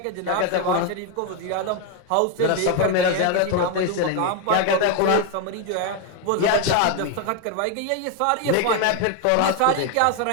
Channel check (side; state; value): both; different; correlation 0.01